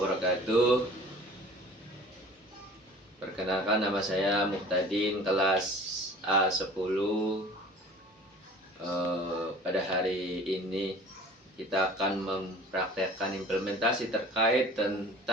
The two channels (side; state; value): both; normal; correlation 0.45